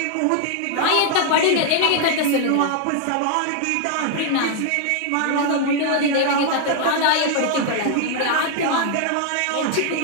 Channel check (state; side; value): different; both; correlation 0.00